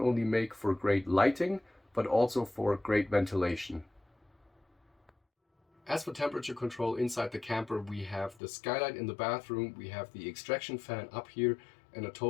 make for great lighting, but also for great ventilation. As for temperature control inside the camper, we have the skylight in the bathroom, we have the extraction fan up here, and a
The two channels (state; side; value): drops out; right; at 8.4 s